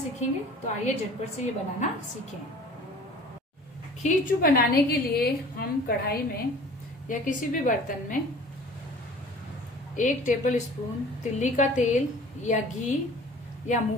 तो आइए झटपट से ये बनाना सीखें। खींचू बनाने के लिए हम कढ़ाई में या किसी भी बर्तन में 1 टेबल स्पून तिल्ली का तेल या घी या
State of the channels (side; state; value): both; normal; correlation 0.46